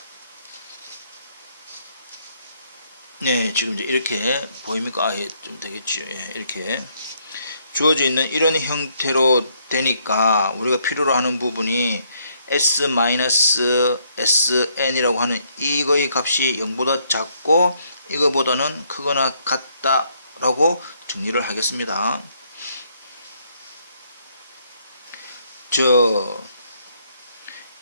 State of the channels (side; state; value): both; inverted; correlation -0.70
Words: 네, 지금 이제 이렇게 보입니까? 좀 되겠죠. 예, 이렇게 주어져 있는 이런 형태로 되니까 우리가 필요로 하는 부분이 S-SN이라고 하는 이거의 값이 0보다 작고 이거보다는 크거나 같다라고 정리를 하겠습니다.